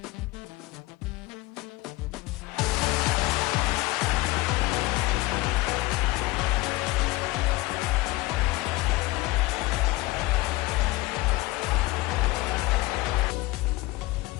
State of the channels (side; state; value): right; quieter; 20.0 dB